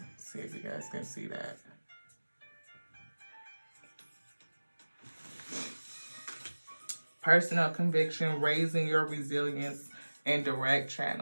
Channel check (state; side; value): inverted; both; correlation -1.00